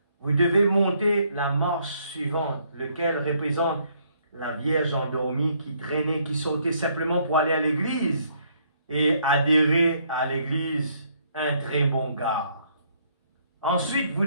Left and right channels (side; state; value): both; inverted; correlation -0.68